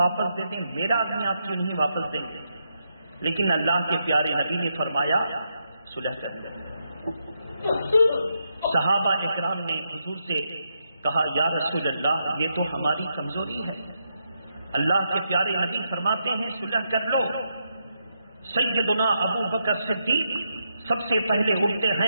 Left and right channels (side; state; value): both; inverted; correlation -0.82